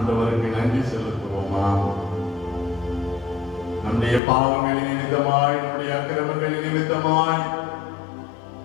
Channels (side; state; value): right; drops out; at 4.2 s